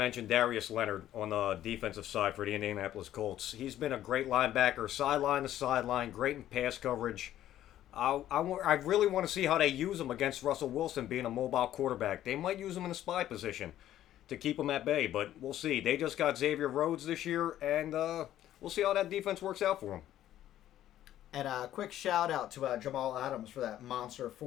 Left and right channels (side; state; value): right; quieter; 12.5 dB